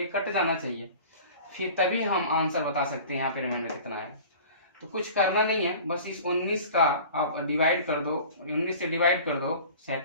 कट जाना चाहिए, फिर तभी हम आंसर बता सकते हैं यहाँ पे रिमाइंडर कितना है। तो कुछ करना नहीं है, बस इस 19 का आप डिवाइड कर दो, 19 से डिवाइड कर दो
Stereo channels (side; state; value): both; inverted; correlation -0.41